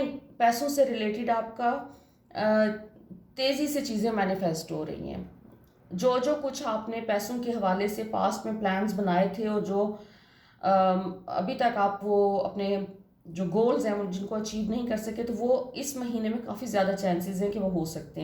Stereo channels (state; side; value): identical; both; correlation 1.00